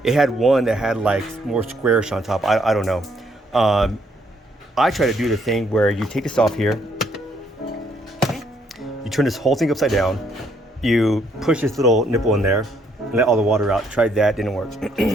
It had one that had like more squarish on top. I don't know. I try to do the thing where you take this off here, you turn this whole thing upside down, you push this little nipple in there and let all the water out. Tried that, didn't work.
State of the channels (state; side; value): normal; both; correlation 0.70